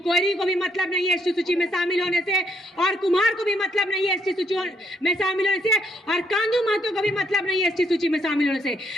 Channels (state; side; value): normal; both; correlation 0.73